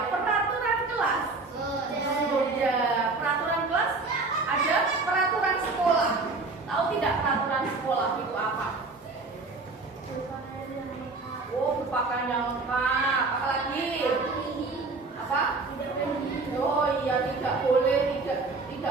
berpakaian yang lengkap. Apa lagi? Apa? Oh iya, tidak boleh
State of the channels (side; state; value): left; quieter; 3.7 dB